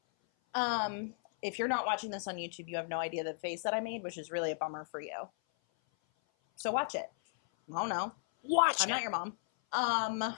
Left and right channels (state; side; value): silent; right; 54 dB below the other